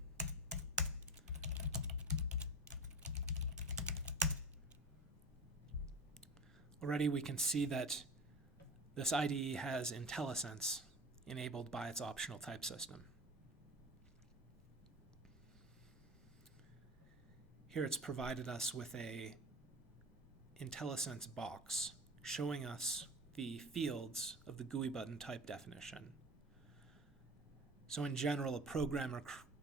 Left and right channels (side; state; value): both; normal; correlation 0.31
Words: Already we can see that this IDE has IntelliSense enabled by its optional type system. Here it's provided us with a IntelliSense box showing us the fields of the GUI button type definition. So in general, a programmer